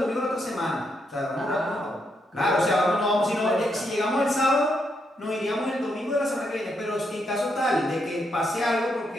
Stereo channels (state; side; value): normal; both; correlation 0.79